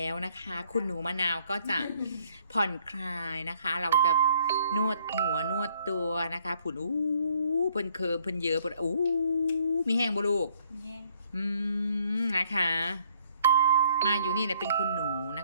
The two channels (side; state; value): both; inverted; correlation -0.65